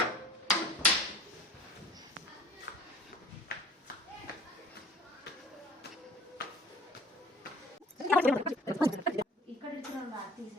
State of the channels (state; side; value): normal; both; correlation 0.47